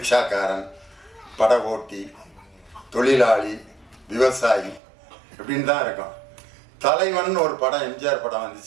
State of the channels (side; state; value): left; drops out; at 4.8 s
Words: பட ஓட்டி, தொழிலாளி, விவசாயி இப்படின்னு தான் இருக்கும். தலைவன் ஒரு படம் எம்ஜிஆர் படம்